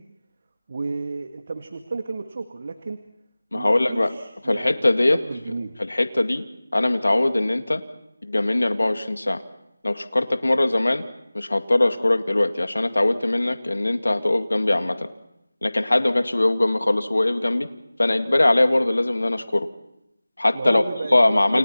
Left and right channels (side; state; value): both; inverted; correlation -0.99